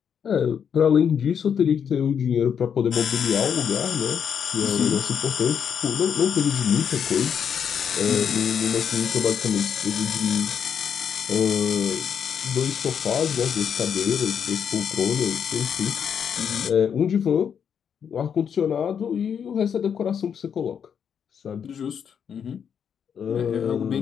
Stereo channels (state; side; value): quieter; right; 7.7 dB